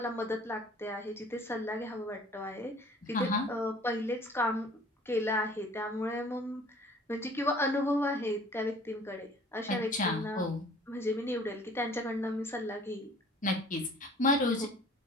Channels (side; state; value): both; normal; correlation 0.51